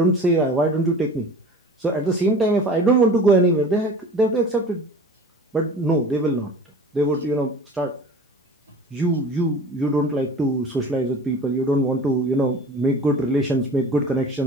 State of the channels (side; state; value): both; normal; correlation 0.40